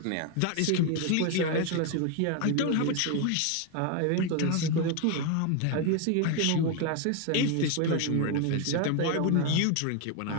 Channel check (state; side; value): different; both; correlation 0.01